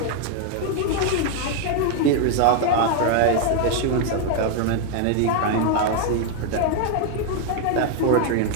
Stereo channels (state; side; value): different; both; correlation 0.00